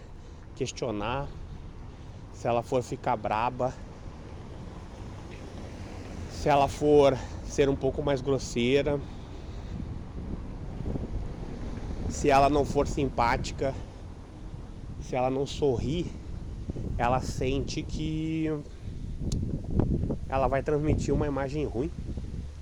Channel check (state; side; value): identical; both; correlation 1.00